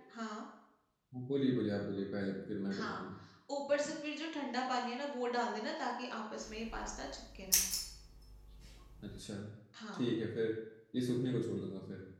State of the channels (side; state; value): both; identical; correlation 1.00